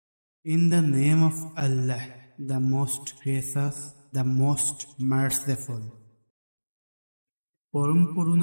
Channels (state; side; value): inverted; both; correlation -1.00